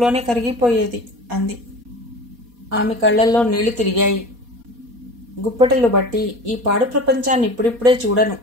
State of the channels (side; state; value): left; late; 4.2 ms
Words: కరిగిపోయేది అంది. ఆమె కళ్లల్లో నీళ్లు తిరిగాయి. గుప్పెటలు బట్టి ఈ పాడు ప్రపంచాన్ని ఇప్పుడిప్పుడే చూడను